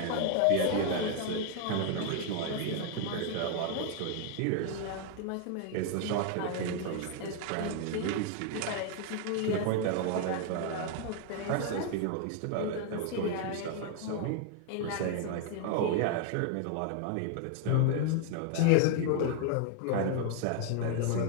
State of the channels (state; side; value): different; both; correlation 0.00